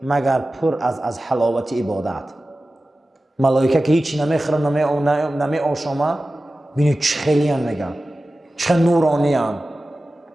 مگر پر از حلاوت عبادت. ملائکه که هیچی نمیخورن نمی آشامه بینید چه خیلی هم میگن چه نورانی هم.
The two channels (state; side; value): normal; both; correlation 0.95